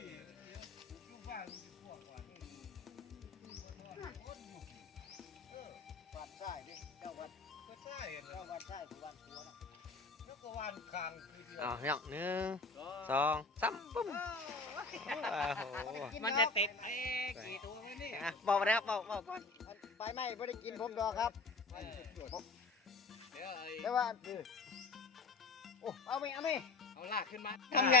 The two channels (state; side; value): quieter; right; 3.5 dB